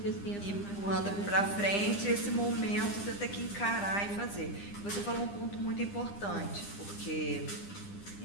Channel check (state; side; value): late; right; 9.9 ms